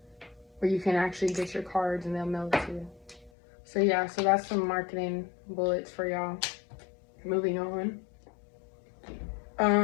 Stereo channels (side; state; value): right; drops out; at 3.3 s